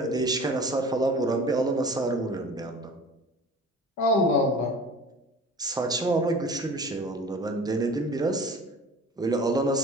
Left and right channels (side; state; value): both; normal; correlation 0.41